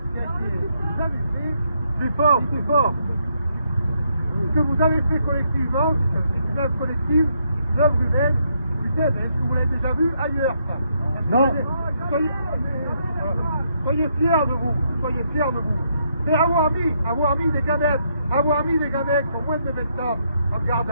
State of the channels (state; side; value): inverted; both; correlation -0.75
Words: vous avez fait, Plus fort, plus fort. ce que vous avez fait collectivement, c'est une œuvre collective, une œuvre humaine. Putain, est-ce que vous l'avez déjà vu ailleurs, ça? Non. Soyez fiers de vous, soyez fiers de vous. C'est avoir mis des gamètes qui ont moins de 20 ans en garde